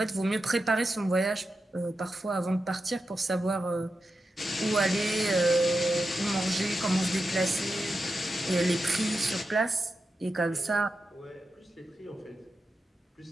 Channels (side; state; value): both; normal; correlation 0.89